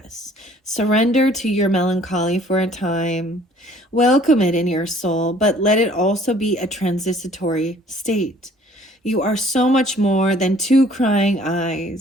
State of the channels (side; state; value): both; normal; correlation 0.56